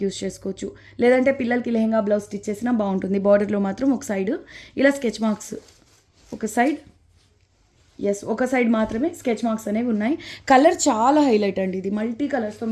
యూస్ చేసుకోవచ్చు. లేదంటే పిల్లలకి లెహంగా బ్లౌజ్ స్టిచ్ చేసినా బాగుంటుంది. బార్డర్లో మాత్రం ఒక సైడ్ ఇలా స్కెచ్ మార్క్స్, ఒక సైడ్ మాత్రమే స్కెచ్ మార్క్స్ అనేవి ఉన్నాయి. కలర్ చాలా హైలైట్ అండి. ఇది మల్టీ కలర్స్తో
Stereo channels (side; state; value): both; identical; correlation 1.00